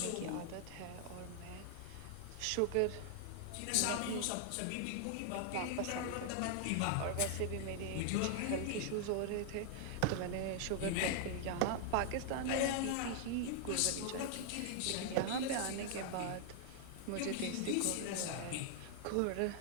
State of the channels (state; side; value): different; both; correlation 0.00